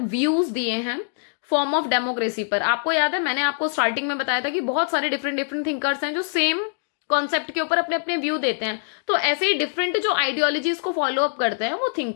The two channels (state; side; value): silent; right; digital silence